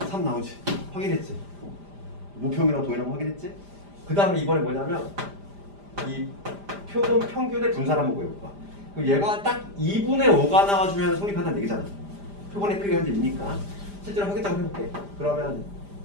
3 나오지. 확인했지? 무평이랑 동일한 거 확인했지? 그 다음에 이번에 뭐냐면 이 표본 평균의 분산 한번 구해볼까? 그럼 얘가 딱 2분의 5가 나와주면 성립한다는 얘기잖아. 표본의 크기가 현재 2니까 실제로 확인 작업 해볼게. 그러면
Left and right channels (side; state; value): left; late; 5.0 ms